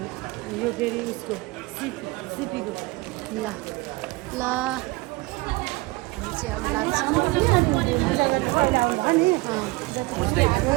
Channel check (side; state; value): left; quieter; 22.4 dB